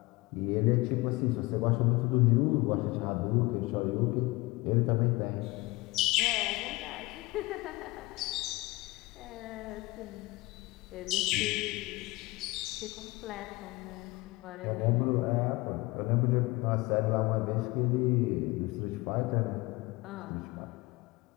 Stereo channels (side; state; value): right; quieter; 22.3 dB